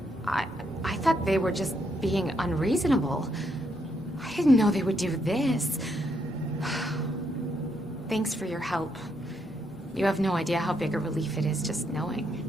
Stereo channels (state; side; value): normal; both; correlation 0.76